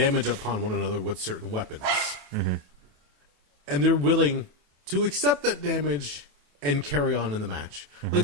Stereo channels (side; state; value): left; late; 28 ms